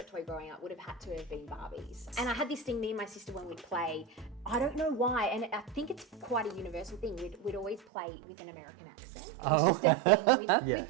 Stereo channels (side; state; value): left; drops out; at 7.8 s